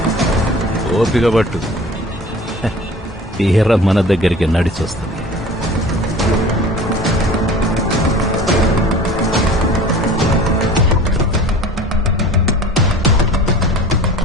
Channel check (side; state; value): both; normal; correlation 0.43